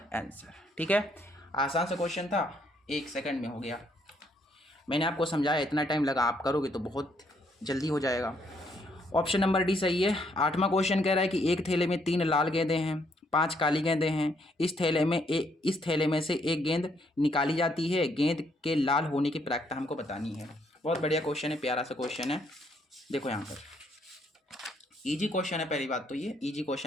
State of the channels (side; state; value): both; normal; correlation 0.71